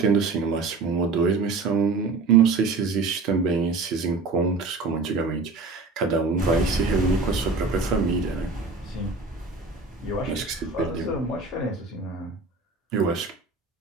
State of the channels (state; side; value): quieter; left; 4.0 dB